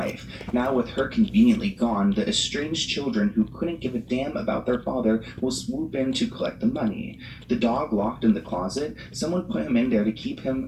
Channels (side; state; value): both; identical; correlation 1.00